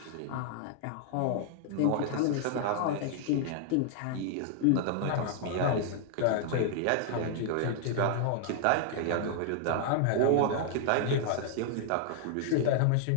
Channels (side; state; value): both; different; correlation -0.01